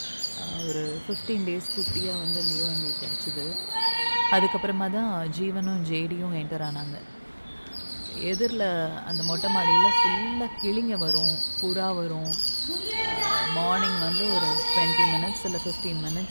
ஒரு 15 டேஸ் குட்டியாக வந்து லியோ எங்களுக்கு கிடச்சிது. அதுக்கப்புறமா தான் ஜீவனும் ஜேடியும் என்டர் ஆனாங்க. எதிரில் அந்த மொட்டை மாடியில் ஃபுல்லாக கிளிங்க வரும், புறா வரும். மார்னிங் வந்து ஒரு 20 மினிட்ஸ் இல்லை 15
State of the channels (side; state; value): both; inverted; correlation -1.00